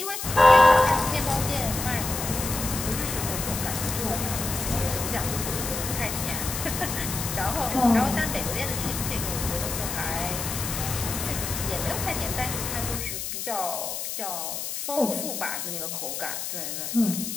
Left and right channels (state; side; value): noise; left; hiss, 5 dB below the sound